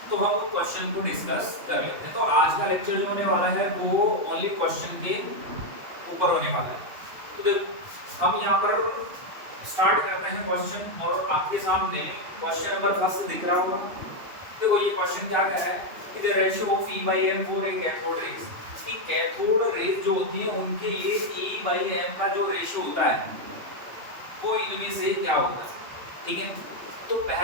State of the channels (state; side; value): late; left; 3.0 ms